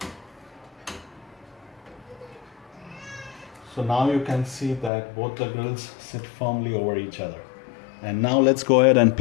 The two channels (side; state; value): right; drops out; at 4.9 s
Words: So now you can see that both the grills sit firmly over each other. And now let's go ahead and